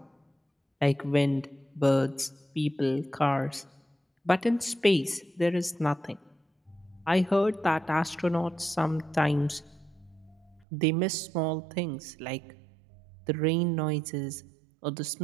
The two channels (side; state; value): left; drops out; at 10.7 s